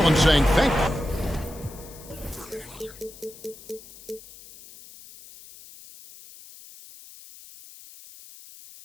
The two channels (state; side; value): noise; left; hiss, 19 dB below the sound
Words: saying thank you.